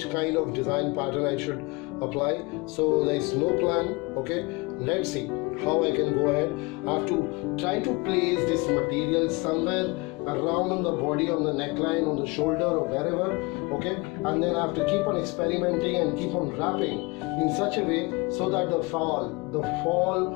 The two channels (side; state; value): right; quieter; 26.1 dB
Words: kind of design pattern I should apply. So there is no plan. Okay, let's see how I can go ahead. I have to try to place this material somewhere around on the body, on the neckline, on the shoulder or wherever. Okay, and then I have to keep on experimenting and keep on wrapping in such a way so that